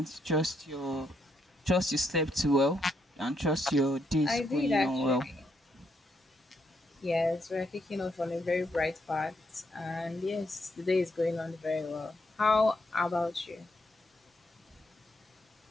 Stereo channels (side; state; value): both; normal; correlation 0.77